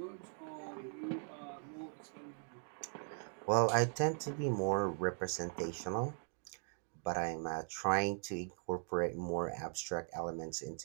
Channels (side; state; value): left; silent; 51 dB below the other